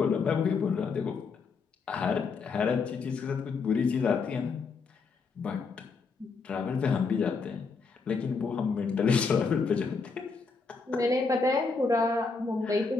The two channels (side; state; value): right; quieter; 4.7 dB